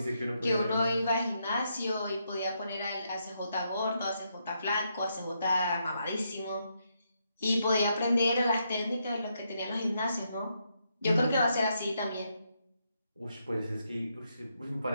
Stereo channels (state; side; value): inverted; both; correlation -0.79